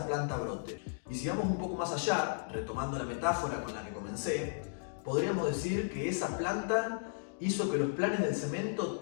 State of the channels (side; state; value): right; silent; digital silence